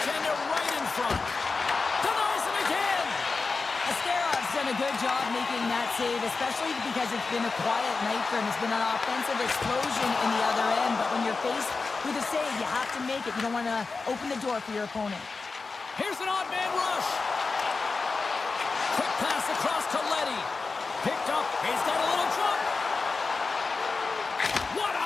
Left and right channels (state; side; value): quieter; right; 4.2 dB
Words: right in front. Denies him again. Asterov's done a good job making that save, especially because it's been a quiet night for him. It's been an offensive explosion in the other end, but when you're faced with a save, you have to make it. You don't want to open the door for your opponent. Here's an odd man rush. Quick pass across to Letty. Picked up. He's got a little jump. What